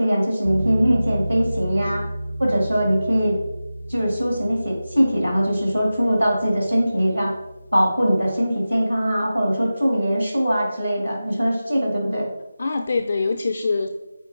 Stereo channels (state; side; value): inverted; both; correlation -0.95